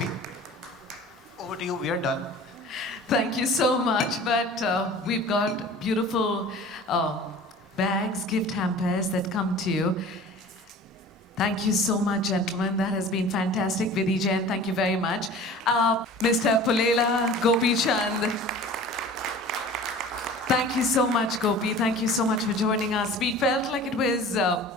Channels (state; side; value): normal; both; correlation 0.42